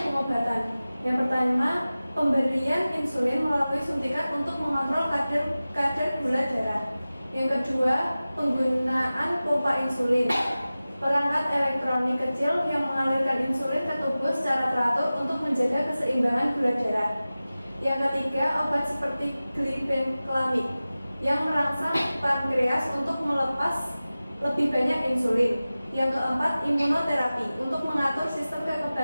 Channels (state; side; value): inverted; both; correlation -0.96